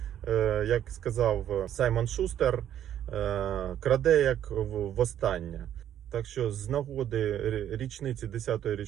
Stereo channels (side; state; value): left; quieter; 10.7 dB